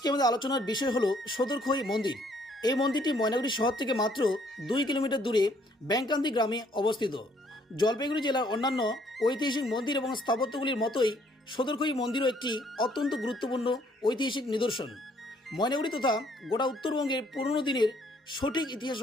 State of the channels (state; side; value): normal; both; correlation 0.65